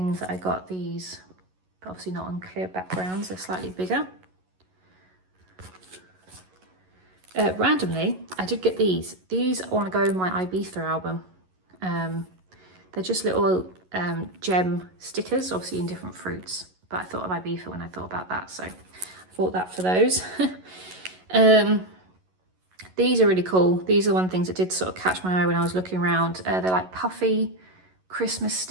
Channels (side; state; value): left; late; 11 ms